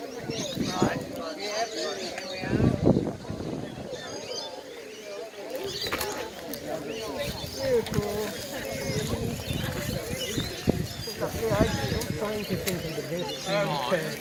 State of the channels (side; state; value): both; identical; correlation 1.00